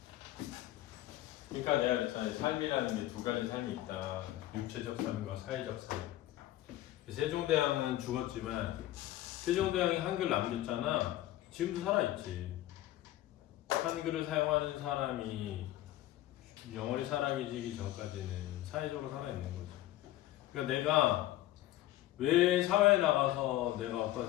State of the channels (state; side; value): quieter; right; 14.9 dB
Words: 그러니까 내가 그랬잖아. 삶이라는 게 두 가지 삶이 있다. 육체적 삶과 사회적 삶. 세종대왕은 죽었지만 세종대왕이 한글 남겼잖아. 지금도 살아있지. 한글을 사용하는 사람이 영원히 살아계시기 전까지는 사회적으로 살아있는 거죠. 그러니까 내가 왜 사회에 나가서 내가